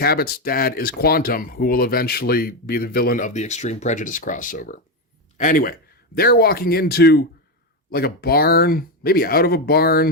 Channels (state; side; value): normal; both; correlation 0.10